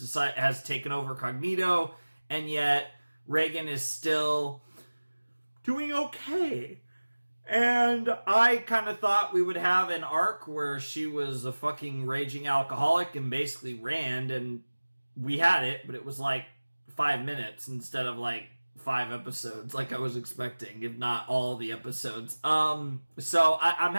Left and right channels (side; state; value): both; inverted; correlation -1.00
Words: taken over Cognito, and yet Reagan is still doing okay. And I kind of thought we would have an arc where she was a fucking raging alcoholic and basically Rand, and we had it, but it was like 5 minutes instead of like 5 episodes like I was expecting, if not all the episodes. So I'm